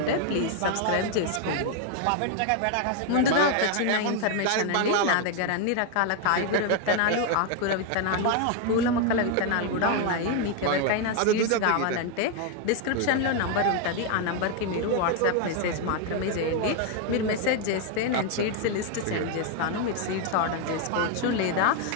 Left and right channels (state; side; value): different; both; correlation 0.01